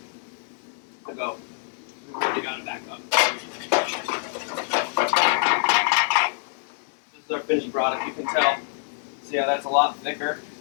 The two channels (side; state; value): right; silent; 60 dB below the other